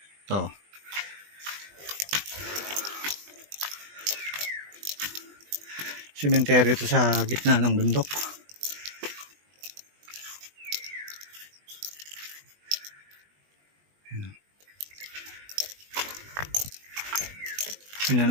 Ito. Sementeryo ito sa gitna ng bundok. Tingnan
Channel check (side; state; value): left; late; 20 ms